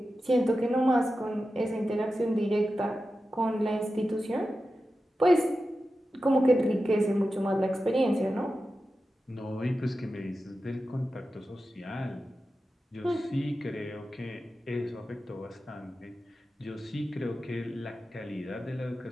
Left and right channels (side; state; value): both; normal; correlation 0.92